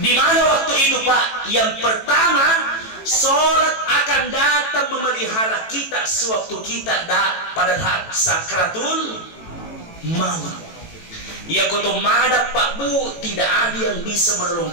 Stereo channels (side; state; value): right; late; 18 ms